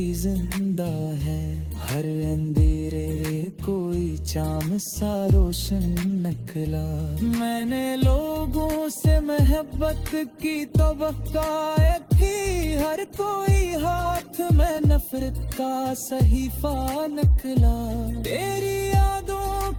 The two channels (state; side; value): identical; both; correlation 1.00